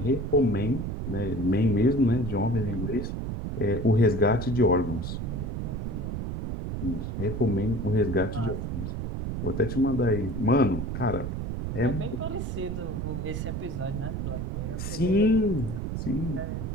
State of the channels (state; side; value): noise; right; rumble, 4 dB below the sound